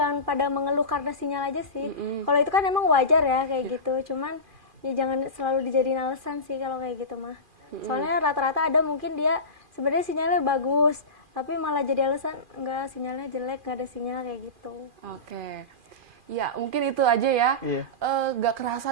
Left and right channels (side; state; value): left; late; 2.4 ms